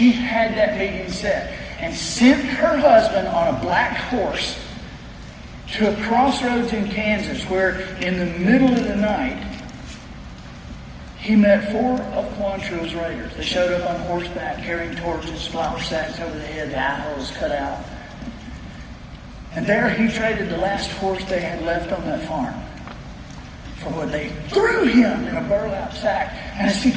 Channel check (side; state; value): both; identical; correlation 1.00